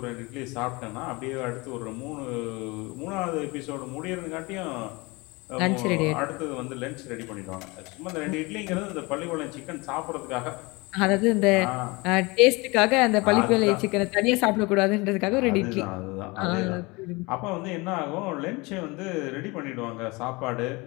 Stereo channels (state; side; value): quieter; right; 25.2 dB